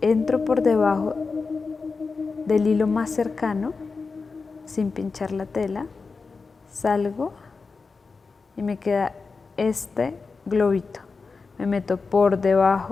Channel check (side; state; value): right; quieter; 4.5 dB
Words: entro por debajo del hilo más cercano, sin pinchar la tela, salgo y me queda este globito. Me meto por